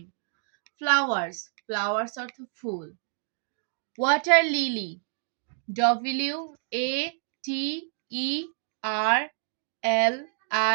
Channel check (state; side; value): silent; left; 59 dB below the other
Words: ফ্লাওয়ার্স। ফ্লাওয়ার্স অর্থ ফুল। Water lily.